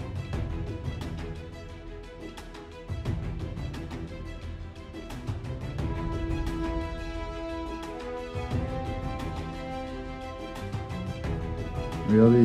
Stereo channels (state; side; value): identical; both; correlation 1.00